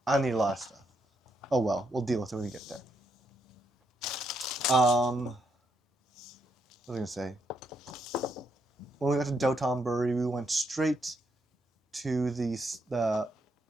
I need a lot of stuff. Oh well, we'll deal with it when we get there. What was I gonna say? When we got to Dotonbori, we went straight to the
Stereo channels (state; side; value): normal; both; correlation 0.78